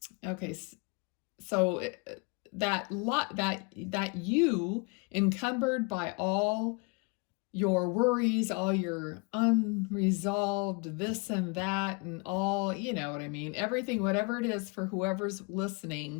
okay, so that you, encumbered by all your worries, all your unresolved this and that, and all, you know what I mean, everything, whatever it is for whoever's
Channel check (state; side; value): quieter; right; 31.3 dB